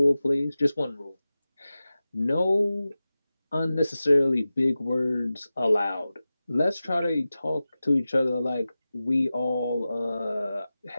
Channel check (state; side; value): inverted; both; correlation -0.95